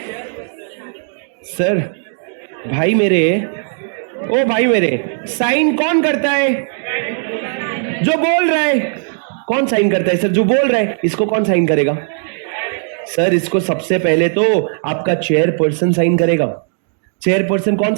सर भाई मेरे, ओ भाई मेरे, साइन कौन करता है? जो बोल रहा है। कौन साइन करता है सर? जो बोल रहा है। इसको कौन साइन करेगा? सर इसको सबसे पहले तो आपका चेयरपर्सन साइन करेगा। चेयरपर्सन कौन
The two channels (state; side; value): silent; left; digital silence